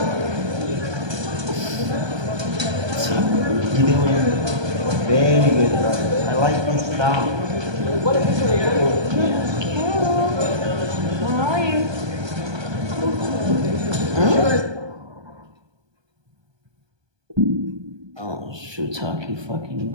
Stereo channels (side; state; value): left; late; 1.2 ms